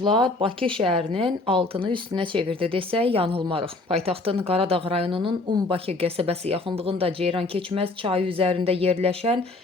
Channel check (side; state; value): right; quieter; 3.2 dB